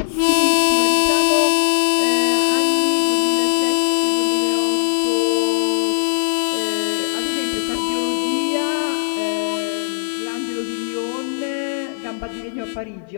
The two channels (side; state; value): right; silent; 55 dB below the other